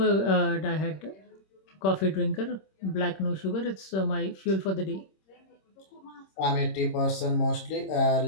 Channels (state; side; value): late; right; 26 ms